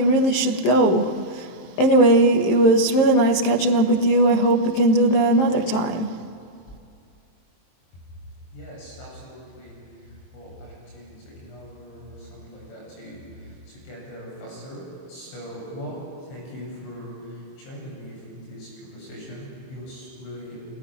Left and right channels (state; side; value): late; right; 23 ms